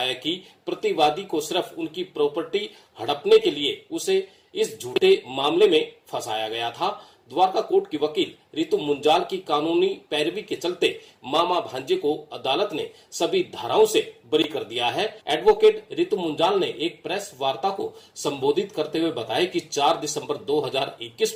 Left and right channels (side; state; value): both; identical; correlation 1.00